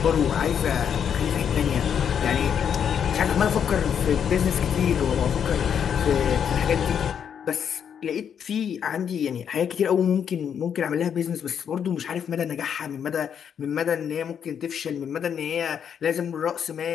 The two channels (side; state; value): right; quieter; 8.1 dB